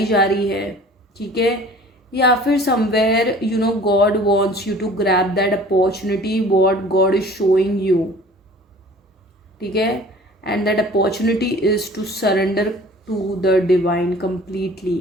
जा रही है, ठीक है, या फिर somewhere you know God wants you to grab that opportunity what God is showing you, ठीक है, and that opportunity is to surrender to the divine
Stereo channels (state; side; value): normal; both; correlation 0.47